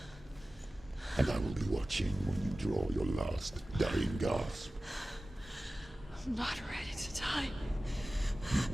And I will be watching when you draw your last dying gasp. I'm not ready to die.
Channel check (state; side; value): normal; both; correlation 0.96